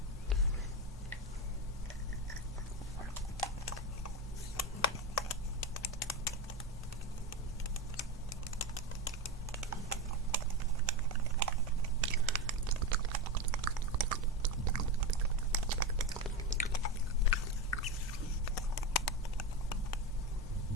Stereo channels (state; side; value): normal; both; correlation 0.17